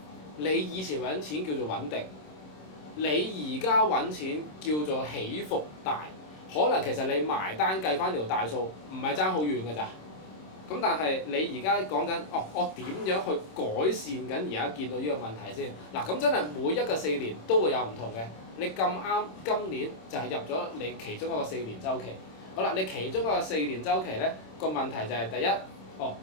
你以前揾錢叫做穩定，你而家揾錢叫做起伏大，可能其實你埋單計翻條大數，唔係爭好遠㗎咋。咁但係你而家講緊，我點樣去改善緊而家見到呢個問題先？嗱，咁真係每一個4年都會有唔同嘅。你咁啱今年就係入咗你其中一個4年週期。好啦，你其中一個4年週期咧，個問題就係第一，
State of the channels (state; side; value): late; right; 26 ms